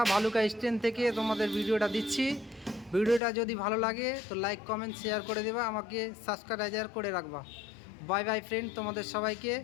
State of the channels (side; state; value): right; drops out; at 3.2 s